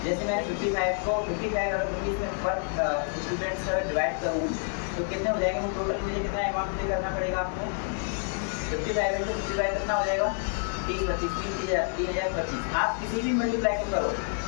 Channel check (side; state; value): right; silent; 56 dB below the other